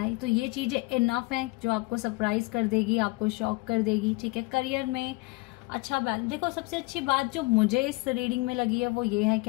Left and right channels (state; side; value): quieter; right; 24.6 dB